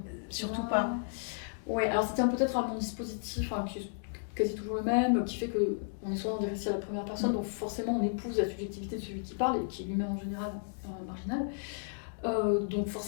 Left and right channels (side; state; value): right; silent; digital silence